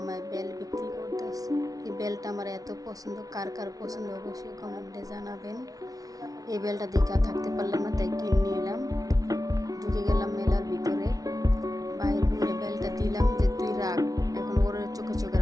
বেল বিক্রি করতেছে। এই বেলটা আমার এত পছন্দ, কার কার পছন্দ অবশ্যই কমেন্টে জানাবেন। এই বেলটা দেখে আর থাকতে পারলাম না, তাই কিনে নিলাম। ঢুকে গেলাম মেলার ভিতরে, বাইরে ঘুরে বেলটা দিলাম যে তুই রাখ, এখন ওর চোখে চোখে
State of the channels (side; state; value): left; late; 0.18 ms